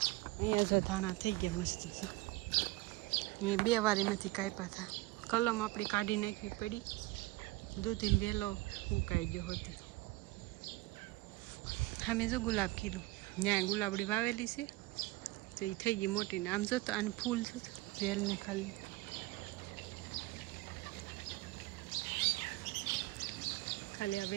અહીંયા જો ધાણા થઈ ગયા મસ્ત છે, મેં 2 વાર એમાંથી કાપ્યા હતા. કલમ આપણી કાઢી નાખવી પડી, દૂધીને વહેલો ઉકાઈ ગયો હતી. અમે જો ગુલાબ કીધું ત્યાં ગુલાબડી વાવેલી છે તો એ થઈ ગઈ મોટી ને. આમ જો તો આને ફૂલ છે વેલને ખાલી ખાલી આ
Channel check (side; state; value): left; quieter; 20.1 dB